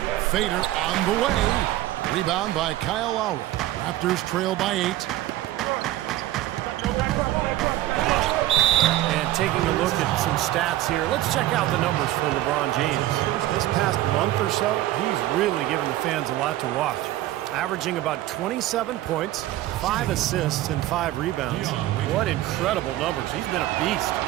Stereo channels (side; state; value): left; quieter; 15.1 dB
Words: Fader on the way. Rebound by Kyle Lowry. Raptors trail by 8. And taking a look at some stats here, let's check out the numbers for LeBron James. This past month or so, he's really given the fans a lot to watch. Averaging about 27 points, 5 assists, and 5 rebounds. What incredible numbers. He's been a beast.